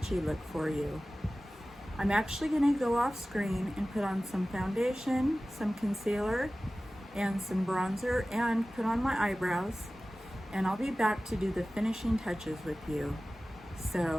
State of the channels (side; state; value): both; normal; correlation 0.96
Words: look for you. I'm actually going to go off screen and put on some foundation, some concealer, and some bronzer, and put on my eyebrows, and I'll be back to do the finishing touches with you.